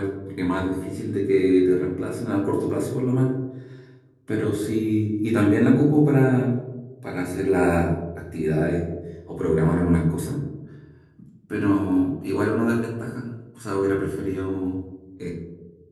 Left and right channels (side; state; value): both; identical; correlation 1.00